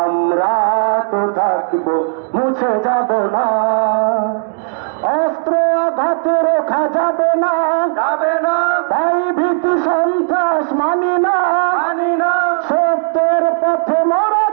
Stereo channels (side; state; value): left; silent; digital silence